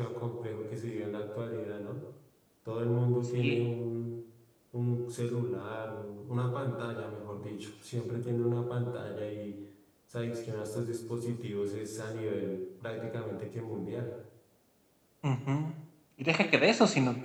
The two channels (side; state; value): both; identical; correlation 1.00